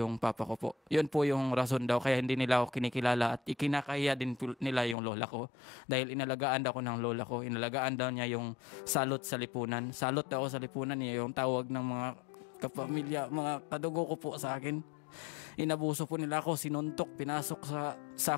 papa ko po. Yun po yung rason daw. Kaya hindi nila ako kinikilala at ikinakaya din nila yung lola ko. Dahil inalagaan daw ko ng lola ko. Inalagaan daw niya yung salot sa lipunan. Salot daw sa lipunan niya yung tawag ng mga kapamilya, mga kadugo ko po sa akin. Inabuso po nila ako, sinuntok, pinasok sa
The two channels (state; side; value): drops out; right; at 5.0 s